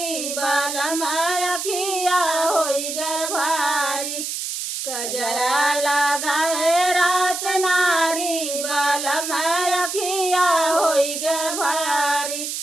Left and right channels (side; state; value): right; noise; hiss, 4 dB below the sound